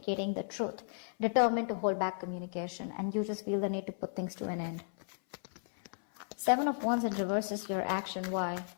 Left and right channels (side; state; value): right; silent; 55 dB below the other